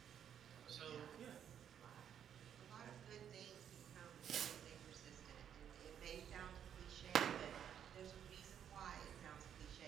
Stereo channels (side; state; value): left; quieter; 9.0 dB